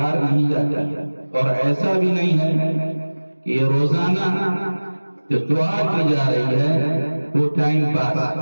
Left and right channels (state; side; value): inverted; both; correlation -1.00